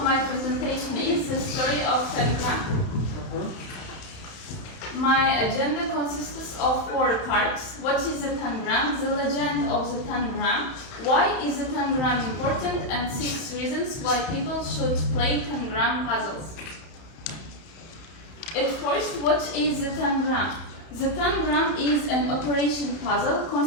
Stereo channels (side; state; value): right; late; 31 ms